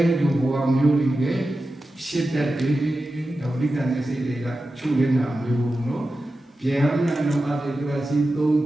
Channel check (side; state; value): both; normal; correlation 0.92